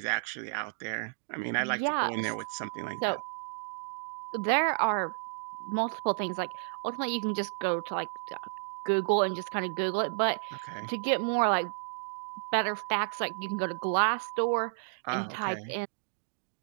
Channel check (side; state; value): left; silent; digital silence